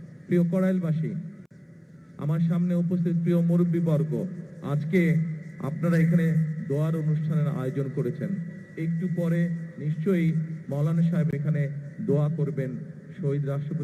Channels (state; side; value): identical; both; correlation 1.00